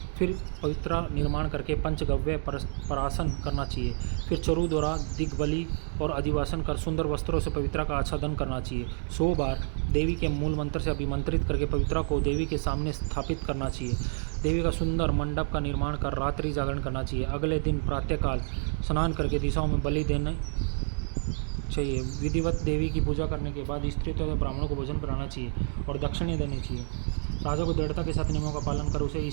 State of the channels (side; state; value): left; silent; 59 dB below the other